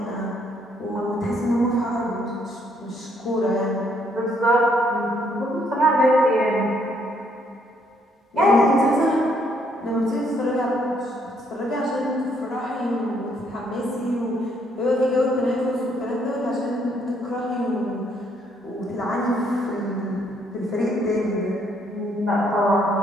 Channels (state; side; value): normal; both; correlation 0.70